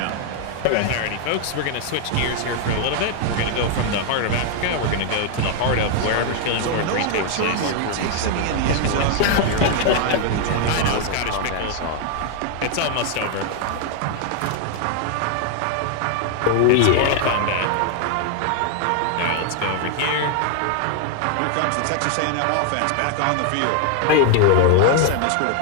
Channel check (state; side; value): different; both; correlation 0.00